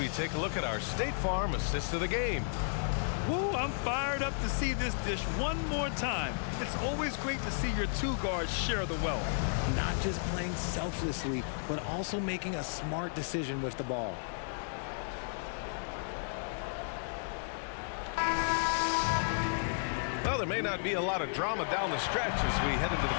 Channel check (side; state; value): right; silent; 55 dB below the other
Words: take a look at our State Farm assist of the game. Woo, I'm fired up to see this dish one more time. It's always great to see your two guards share the wealth. Not just playing selflessly, but also making a smart decision with the ball. Well, there may not be a lot of drama down the stretch as we head into